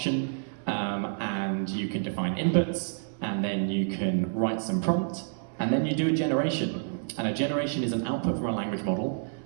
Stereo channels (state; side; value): silent; left; 59 dB below the other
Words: and you can define inputs, and then you can write some prompt, and then you do a generation. And a generation is an output from a language model.